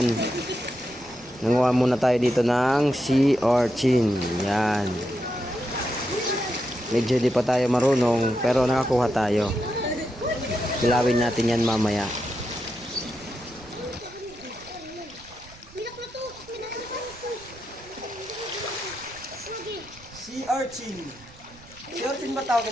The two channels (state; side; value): noise; right; rumble, 23 dB below the sound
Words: Nanguha muna tayo dito ng sea urchin. Yan. Medyo di pa tayo marunong pero nakakuha tayo. Kilawin natin yan mamaya. Sea urchin. Sea urchin ba tawag